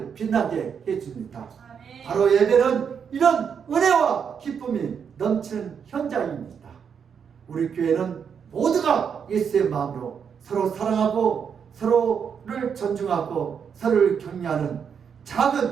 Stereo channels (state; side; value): quieter; left; 7.1 dB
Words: 빛나게 해줍니다. 아멘. 바로 예배는 이런 은혜와 기쁨이 넘치는 현장입니다. 우리 교회는 모두가 예수의 마음으로 서로 사랑하고 서로를 존중하고 서로를 격려하는